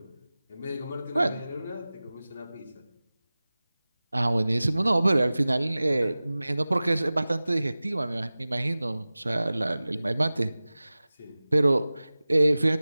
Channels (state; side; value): inverted; both; correlation -0.98